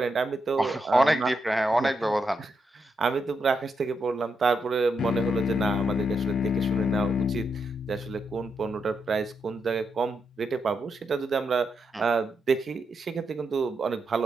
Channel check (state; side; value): normal; both; correlation 0.82